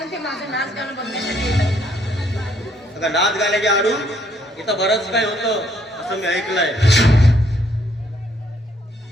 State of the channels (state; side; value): normal; both; correlation 0.68